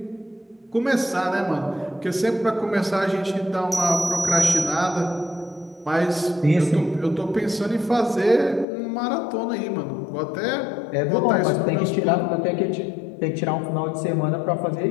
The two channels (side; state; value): right; drops out; at 8.7 s